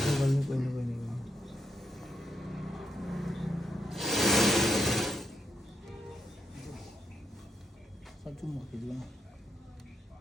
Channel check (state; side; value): normal; both; correlation 0.79